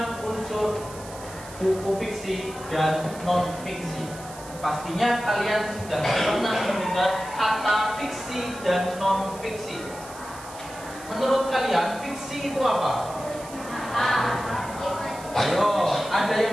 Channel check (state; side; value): noise; right; hiss, 17 dB below the sound